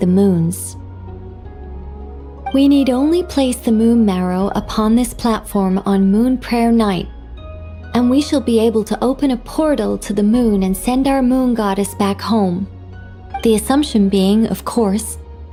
moons. We need only place the moon marrow upon this platform on Moon Prayer Night, and we shall be able to open a portal to the moon and send our moon goddess back home. The assumption being, of course,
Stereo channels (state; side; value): identical; both; correlation 1.00